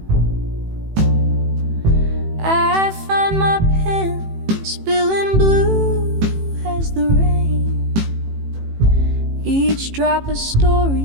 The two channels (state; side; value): late; left; 18 ms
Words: I find my pen spilling blue as the rain, each drop a